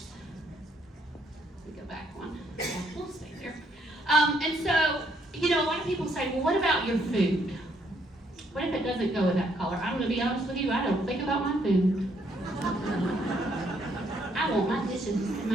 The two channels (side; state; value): both; normal; correlation 0.70